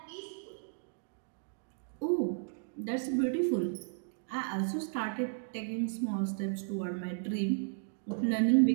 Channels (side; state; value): left; silent; digital silence